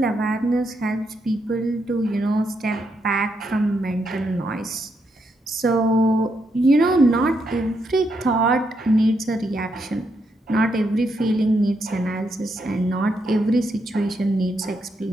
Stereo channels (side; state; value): both; normal; correlation 0.79